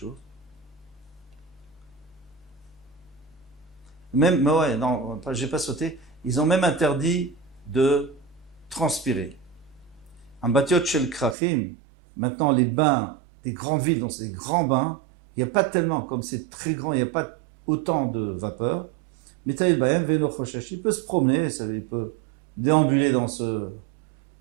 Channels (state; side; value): drops out; left; at 11.4 s